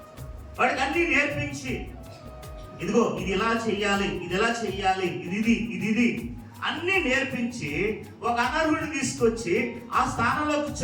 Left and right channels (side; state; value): both; identical; correlation 1.00